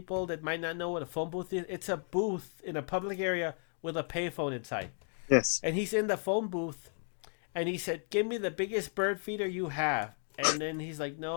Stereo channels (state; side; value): silent; right; 55 dB below the other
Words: that might not know what a phone booth is, it's a booth in a public area with a payphone inside. Yes. And he's in the phone booth and he said, "Give me the biggest bird feeder you have." And then he's like,